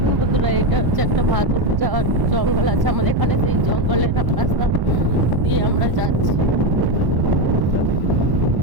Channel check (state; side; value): late; left; 1.1 ms